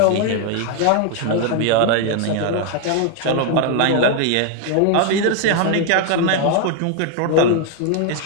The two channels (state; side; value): different; both; correlation 0.00